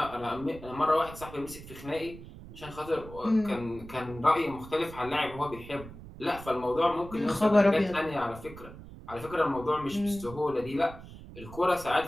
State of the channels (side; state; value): right; noise; rumble, 15 dB below the sound